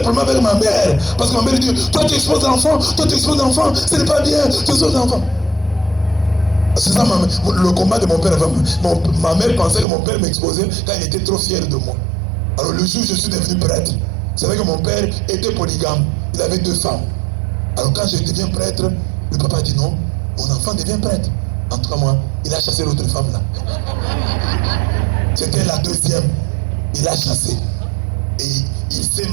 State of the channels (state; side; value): drops out; left; at 9.9 s